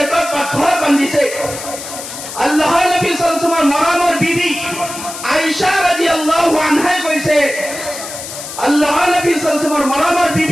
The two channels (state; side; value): noise; left; hiss, 10 dB below the sound